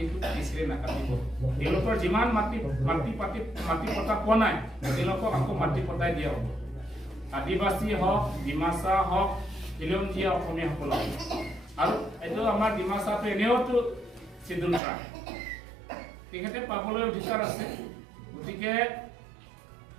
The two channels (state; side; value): drops out; left; at 14.8 s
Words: কিসৰে না কাটিব এলোকৰ जिमान মাটি পটা কোনাই এলোকক আকো মাটি পটাই দিয়া হ'ব আদিবাসী হক ডিমাসা হক খিলঞ্জিয়া অসমীয়া সকল আৰু এটো আমাৰ ডিমাসাটো এনেওটো সিদ্ধুল ট্ৰাইব তেখেতে পাবলৈ অধিকাৰ আছে গতিকে